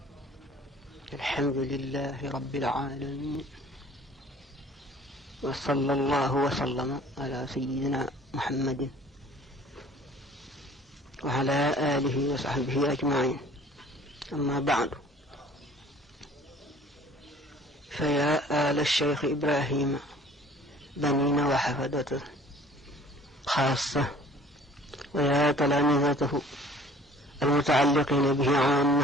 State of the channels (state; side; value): normal; both; correlation 0.51